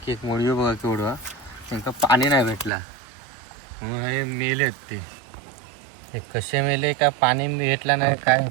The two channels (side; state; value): left; drops out; at 2.7 s